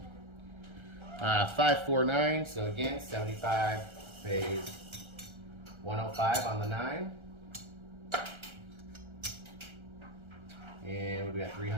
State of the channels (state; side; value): late; left; 1.3 ms